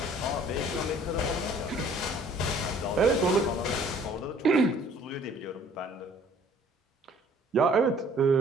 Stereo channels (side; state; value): both; normal; correlation 0.55